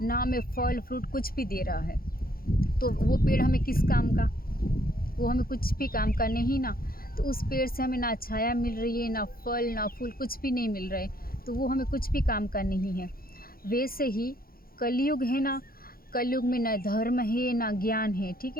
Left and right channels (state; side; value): late; right; 0.43 ms